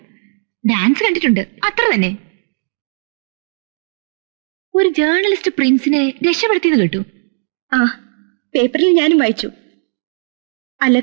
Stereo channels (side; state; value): left; silent; digital silence